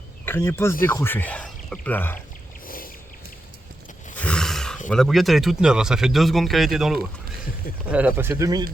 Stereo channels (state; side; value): normal; both; correlation 0.87